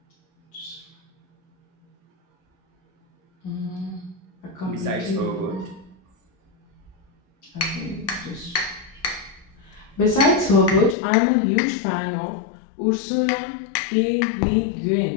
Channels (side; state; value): right; drops out; at 11.0 s